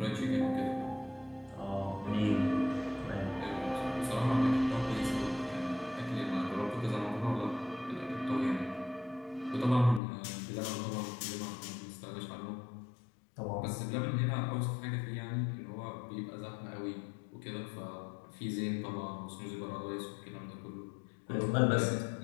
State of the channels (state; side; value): drops out; right; at 10.0 s